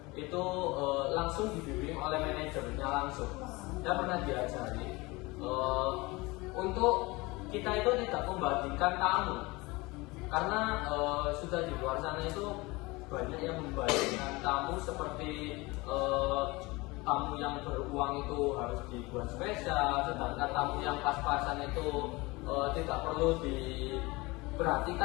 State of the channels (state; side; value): quieter; right; 23.4 dB